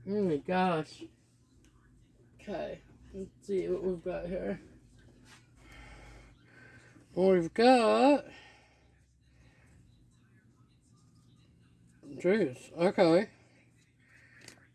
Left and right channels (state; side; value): identical; both; correlation 1.00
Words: Oh my gosh. Okay. Let's see what we've got here. We've got... Jeez. Okay.